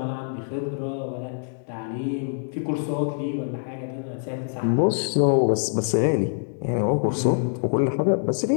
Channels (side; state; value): right; silent; 62 dB below the other